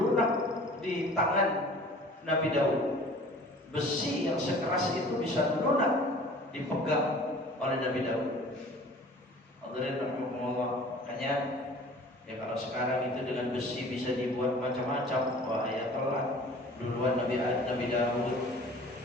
di tangan Nabi Daud. Besi yang sekeras itu bisa lunak dipegang oleh Nabi Daud. Hadirin rahimakumullah. Makanya ya kalau sekarang itu dengan besi bisa dibuat macam-macam, wah ya telat. Duluan Nabi Daud,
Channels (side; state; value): both; normal; correlation 0.46